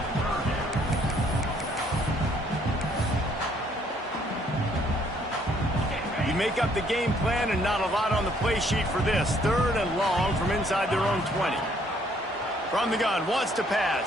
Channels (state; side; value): normal; both; correlation 0.65